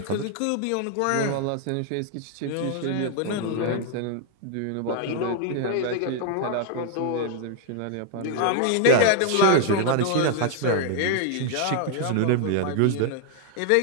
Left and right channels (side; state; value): both; different; correlation 0.00